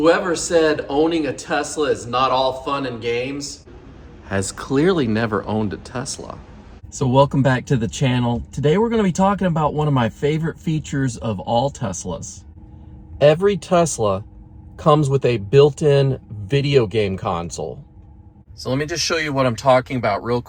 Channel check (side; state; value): both; identical; correlation 1.00